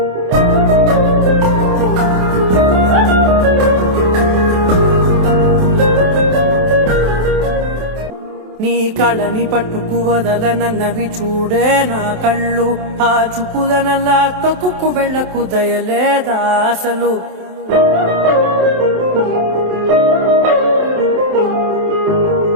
నీ కళని పట్టుకు వదలనన్నవి చూడే నా కళ్ళు, ఆ చూపులనల్లా తొక్కుకు వెళ్ళకు దయలేదా అసలు.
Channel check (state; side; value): late; left; 27 ms